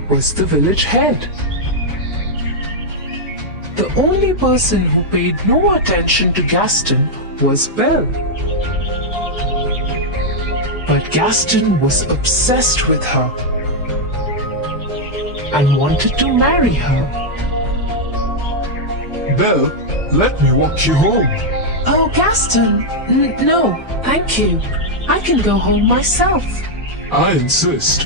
was the village head. The only person who paid no attention to Gaston was Belle. But Gaston was obsessed with her and wanted to marry her. Belle, let me walk you home. Oh, Gaston, no, thank you. I can go home myself. I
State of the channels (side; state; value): both; normal; correlation -0.02